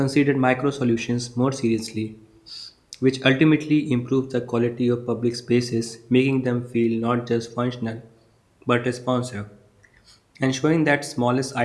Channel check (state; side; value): identical; both; correlation 1.00